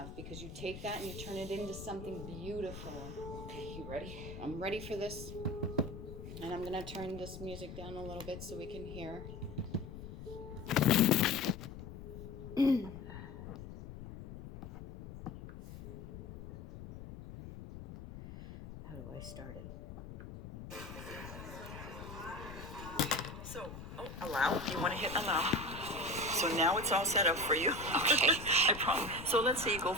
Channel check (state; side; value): noise; left; rumble, 11 dB below the sound